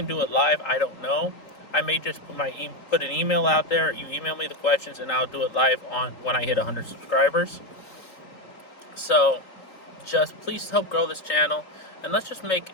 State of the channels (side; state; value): right; late; 4.0 ms